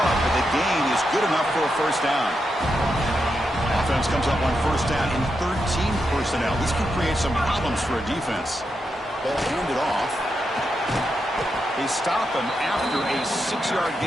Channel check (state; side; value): normal; both; correlation 0.85